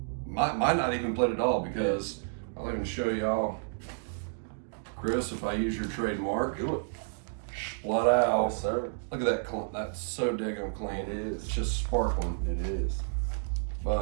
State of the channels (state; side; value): silent; left; digital silence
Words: Might not even played it all, because I'll even show y'all, Chris, if I use your trademark. Do it. Splat out. Yes, sir. Look at that. That's so daggone clean. It is. It's just sparkling. It is.